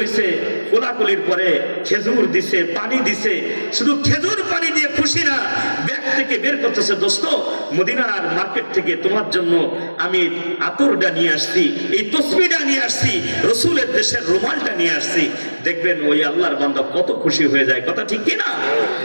কোলাকুলির পরে খেজুর দিছে, পানি দিছে, শুধু খেজুর পানি দিয়ে খুশি না, ব্যাগ থেকে বের করতেছে, দোস্ত মদিনার মার্কেট থেকে তোমার জন্য আমি আতরটা নিয়ে আসছি, এই তসবিহটা নিয়ে আসছি, রসুলের দেশের রুমালটা নিয়ে আসছি। দেখবেন ওই আল্লাহর বান্দা কত খুশি হয়ে যায়, কথা ঠিক কিনা?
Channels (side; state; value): both; inverted; correlation -1.00